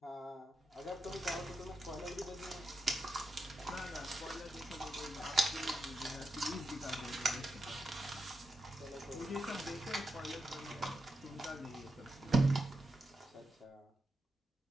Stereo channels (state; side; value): normal; both; correlation 0.86